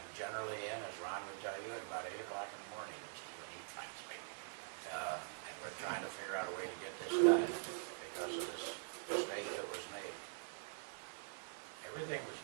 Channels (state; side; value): silent; left; digital silence